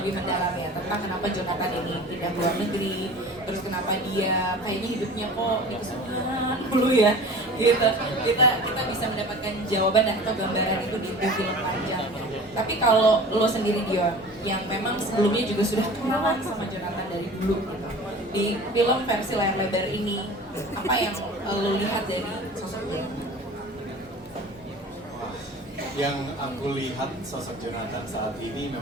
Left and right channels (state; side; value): normal; both; correlation 0.40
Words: lebih mendalam ya tentang kenapa Jonathan ini pindah ke luar negeri, terus kenapa dia kayaknya hidupnya kok di kesulitan dulu ya, gitu. Kita bisa mendapatkan jawaban dan atau gambaran itu di film panjangnya. Tapi kalau lo sendiri Dion, yang memang sebelumnya juga sudah kenalan sama Jonathan dari dulu gitu, di film versi layar lebar ini, apa yang lo lihat dari sosok dia? Yang aku lihat sosok Jonathan saat ini